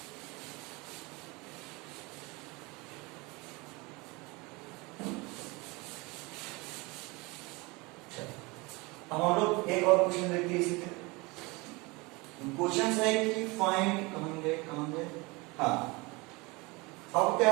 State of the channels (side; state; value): left; quieter; 25.4 dB